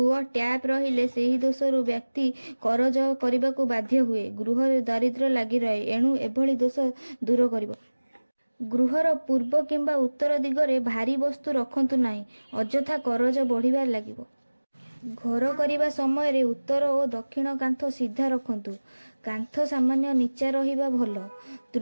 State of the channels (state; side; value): inverted; both; correlation -1.00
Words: ଟ୍ୟାପ୍ ରହିଲେ ସେହି ଦୋଷରୁ ବ୍ୟକ୍ତି କରଜ କରିବାକୁ ବାଧ୍ୟ ହୁଏ। ଗୃହରେ ଦାରିଦ୍ର୍ୟ ଲାଗି ରହେ। ଏଣୁ ଏଭଳି ଦୋଷ ଦୂର କରିବ। ଗୃହର ପୂର୍ବ କିମ୍ବା ଉତ୍ତର ଦିଗରେ ଭାରୀ ବସ୍ତୁ ରଖନ୍ତୁ ନାହିଁ, ଅଯଥା କରଜ ବଢ଼ିବାରେ ଲାଗିବ। ଘର କରିବା ସମୟରେ ଉତ୍ତର ଓ ଦକ୍ଷିଣ କାନ୍ଥ ସିଧା ରଖନ୍ତୁ। କାନ୍ଥ ସାମାନ୍ୟ ନିଚା ରହିବା ଭଲ।